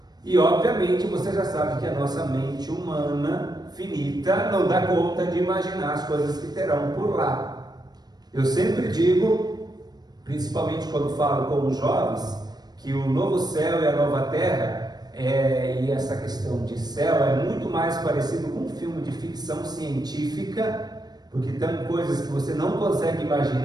E obviamente você já sabe que a nossa mente humana finita não dá conta de imaginar as coisas que terão por lá. Eu sempre digo, principalmente quando falo com os jovens, que o novo céu e a nova terra, e essa questão de céu é muito mais parecido com um filme de ficção científica, porque tem coisas que você não consegue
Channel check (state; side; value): late; left; 0.19 ms